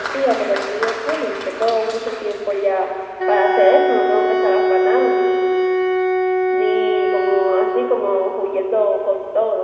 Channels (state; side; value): identical; both; correlation 1.00